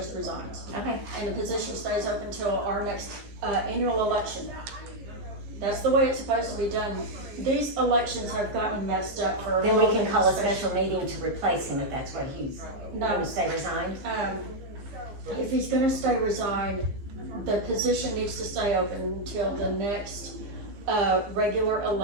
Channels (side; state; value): left; late; 15 ms